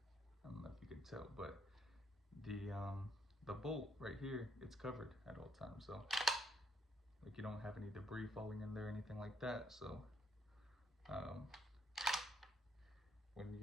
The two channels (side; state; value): both; normal; correlation 0.72